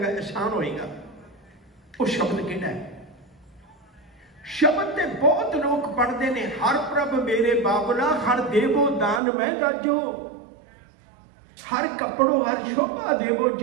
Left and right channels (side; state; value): left; drops out; at 9.2 s